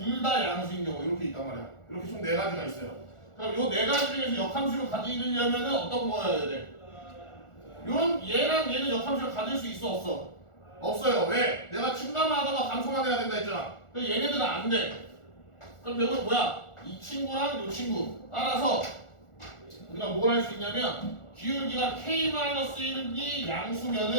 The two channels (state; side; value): late; right; 1.4 ms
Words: 다 양수인 경우 이렇게 있단 말이야. 이렇게 총 네 가지가 있어요. 그럼 요 네 가지 중에서 역함수를 가지려면은 어떤 거여야 돼? 요런 얘랑 얘는 역함수를 가질 수 있어 없어? 없어요. 왜? 내가 증가만 하다가 감소만 해야 된다 했잖아. 근데 얘네들은 안 돼. 그럼 결국 뭐야? 이 친구랑 요 친구 따라서 우리가 뭘 할 수 있냐면 기울기가 k-1이